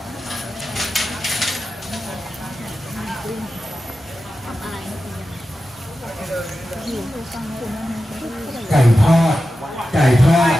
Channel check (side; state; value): both; normal; correlation 0.92